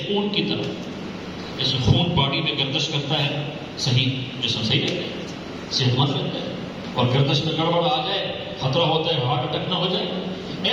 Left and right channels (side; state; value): both; identical; correlation 1.00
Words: خون کی طرح، جیسے خون باڈی میں گردش کرتا ہے، صحیح جسم صحیح رہتا ہے، صحت مند رہتا ہے، اور گردش میں گڑبڑ آ جائے خطرہ ہوتا ہے ہارٹ اٹیک نہ ہو جائے۔